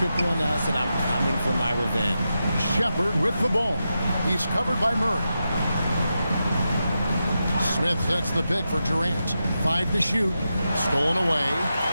on us, and I'm coming for my revenge. Shepherd with the ball. He's covered by Murray. Smith sets the pick for Durant. 5 to shoot. Stolen away.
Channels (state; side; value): inverted; both; correlation -0.89